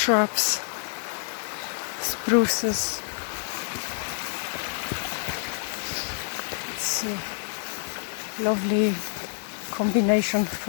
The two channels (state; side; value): silent; right; 60 dB below the other